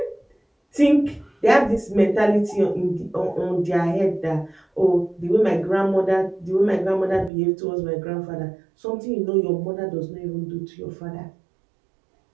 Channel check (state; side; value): drops out; left; at 7.3 s